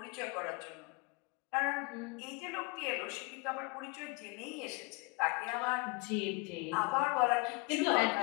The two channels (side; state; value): right; quieter; 28.7 dB